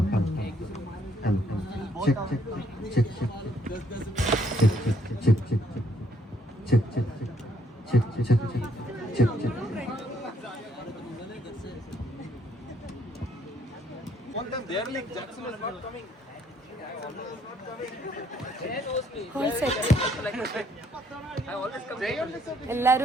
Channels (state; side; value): normal; both; correlation 0.68